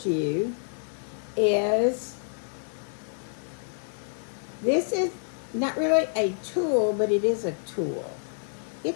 is this is not really a tool, but it is a tool.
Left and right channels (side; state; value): right; silent; 59 dB below the other